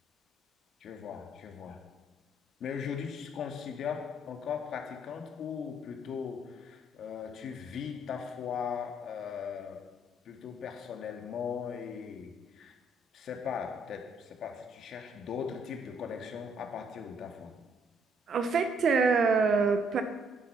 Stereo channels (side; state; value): both; normal; correlation 0.67